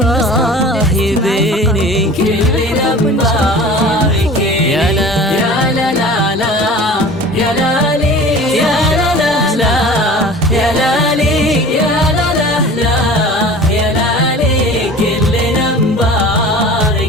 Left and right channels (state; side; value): normal; both; correlation 0.41